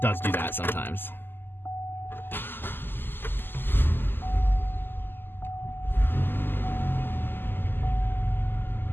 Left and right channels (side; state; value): right; late; 0.096 ms